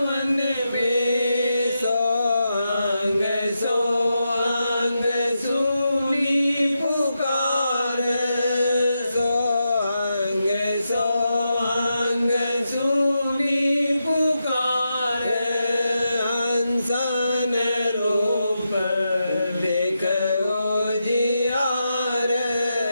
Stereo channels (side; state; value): both; inverted; correlation -0.86